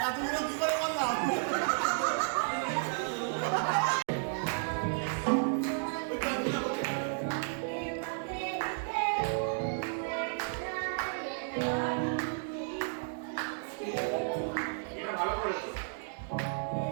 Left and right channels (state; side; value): silent; left; digital silence